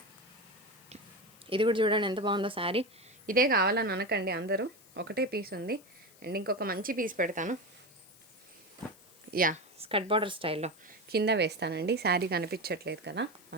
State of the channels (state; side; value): noise; left; hiss, 25 dB below the sound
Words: ఇది కూడా చూడండి ఎంత బాగుందో శారీ. ఇదే కావాలని అనకండి అందరూ, ఒకటే పీస్ ఉంది. అండ్ ఇంకొక మంచి పీస్ పెడతాను, యా స్కర్ట్ బార్డర్ స్టైల్లో కింద వేస్తానండి. శారీ కనిపించట్లేదు కదా,